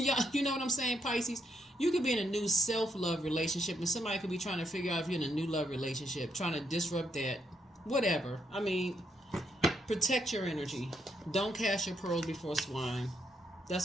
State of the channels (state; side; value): normal; both; correlation 0.78